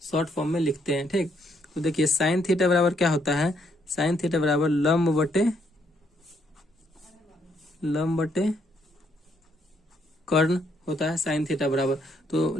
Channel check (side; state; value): both; normal; correlation 0.72